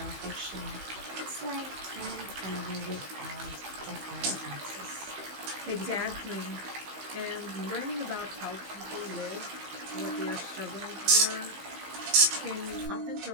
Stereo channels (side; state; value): left; late; 15 ms